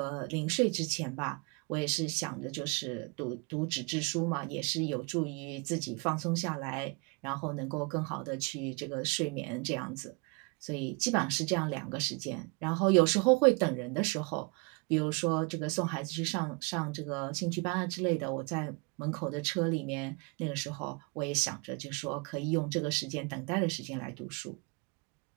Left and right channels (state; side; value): quieter; left; 30.4 dB